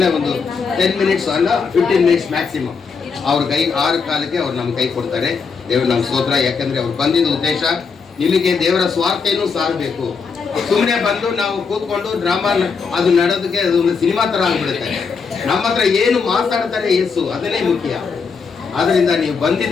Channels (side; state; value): right; quieter; 5.4 dB